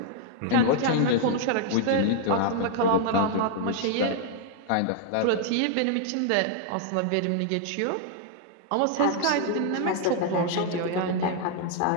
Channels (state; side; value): different; both; correlation 0.00